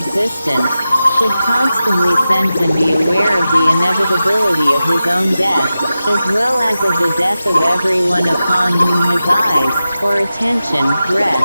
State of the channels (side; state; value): both; inverted; correlation -0.93